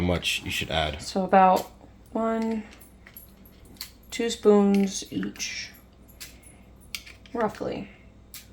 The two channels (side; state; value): both; identical; correlation 1.00